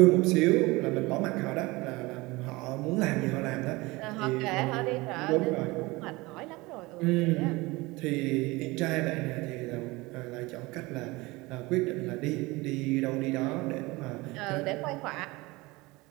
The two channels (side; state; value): left; quieter; 22.4 dB